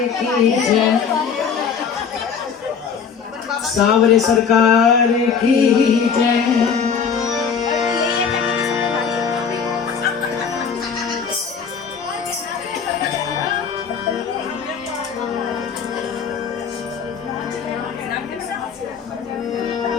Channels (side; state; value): right; quieter; 6.5 dB